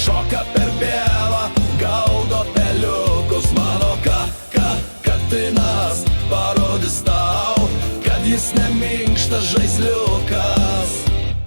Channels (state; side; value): inverted; both; correlation -1.00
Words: per pievą, gaudo peliukus. Mano katinas parodys tau, kad jis neminkštas žaisliukas.